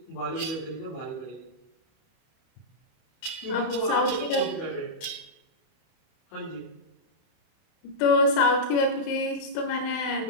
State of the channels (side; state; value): right; late; 31 ms